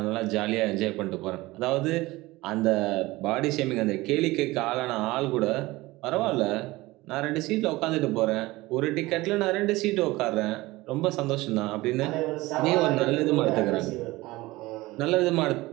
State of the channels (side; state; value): left; quieter; 19.9 dB